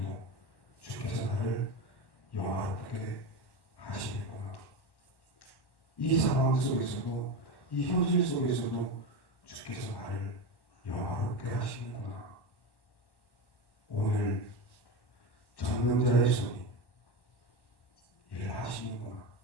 주께서 나를 영화롭게 하시는구나. 이 상황 속에서도 이 현실 속에서도 주께서 나를 영화롭게 하시는구나. 오늘 전능자의 손이 일하시는구나.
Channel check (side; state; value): right; late; 1.1 ms